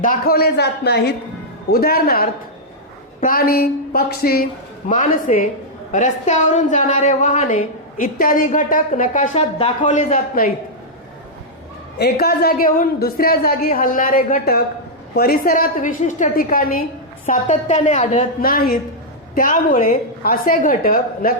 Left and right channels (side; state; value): both; normal; correlation -0.06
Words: दाखवले जात नाहीत. उदाहरणार्थ, प्राणी, पक्षी, माणसे, रस्त्यावरून जाणारे वाहने इत्यादी घटक नकाशात दाखवले जात नाहीत. एका जागेहून दुसऱ्या जागी हलणारे घटक परिसरात विशिष्ट ठिकाणी सातत्याने आढळत नाहीत, त्यामुळे असे घटक